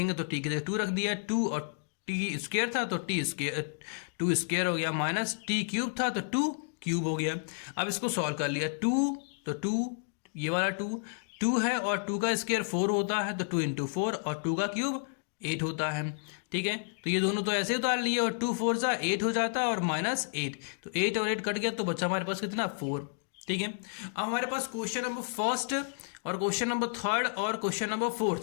तो t की जगह 2 रख दिया, 2 और t² था तो t² हो गया, माइनस t³ था तो 2³ हो गया। अब इसको सॉल्व कर लिया, 2 तो 2, ये वाला 2 है और 2 का स्क्वायर 4 होता है, तो 2 इंटू 4 और 2 का क्यूब 8 होता है। ठीक है, तो ये दोनों तो ऐसे उतार लिए और 2 4 जा 8 हो जाता है और -8, तो 8 और 8 कट गया तो बचा हमारे पास कितना 4। ठीक है, अब हमारे पास क्वेश्चन नंबर फर्स्ट और क्वेश्चन नंबर थर्ड और क्वेश्चन नंबर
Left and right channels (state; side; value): silent; right; digital silence